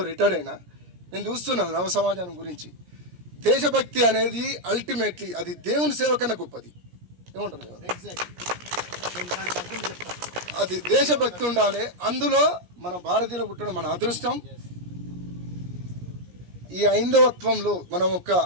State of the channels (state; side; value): late; left; 17 ms